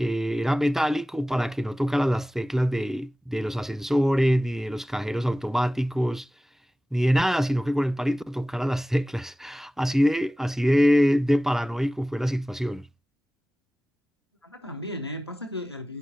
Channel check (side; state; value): both; normal; correlation 0.97